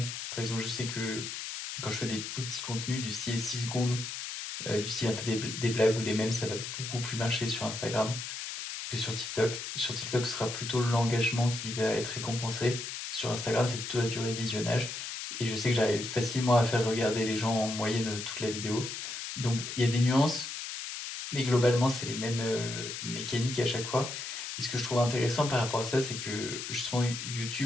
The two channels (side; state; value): left; noise; hiss, 6 dB below the sound